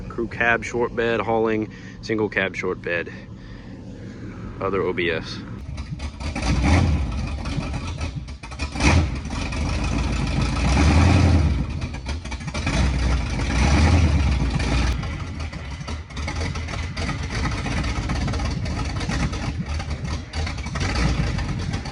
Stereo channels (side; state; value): both; identical; correlation 1.00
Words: Crew cab short bed hauling, single cab short bed, other OBS.